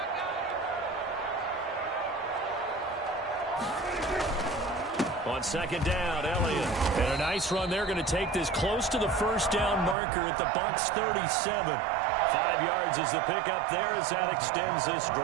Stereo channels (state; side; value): drops out; left; at 10.0 s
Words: On 2nd down, Elliott. And a nice run. They're going to take this close to the 1st down marker at the Bucs 37. 5 yards is the pickup there as that extends this